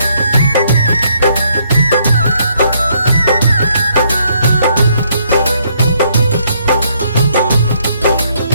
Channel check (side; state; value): both; inverted; correlation -0.70